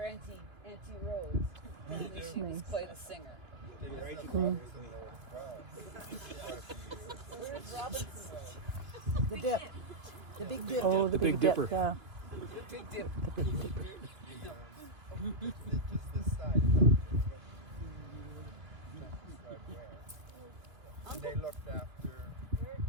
Auntie Rose. And she was quite a singer. Where's Robinson Road? The dip. The big dip. Oh, the Big Dipper. Yeah. The big dip. Just this side. And they looked after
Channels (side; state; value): left; late; 2.4 ms